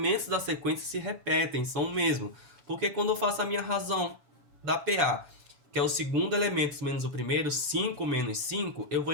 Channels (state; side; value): late; left; 6.9 ms